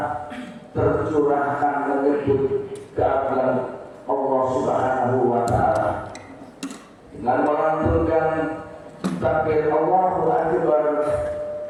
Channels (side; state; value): both; identical; correlation 1.00